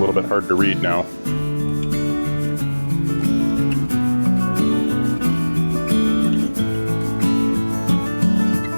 bit hard to read now.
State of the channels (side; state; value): both; inverted; correlation -1.00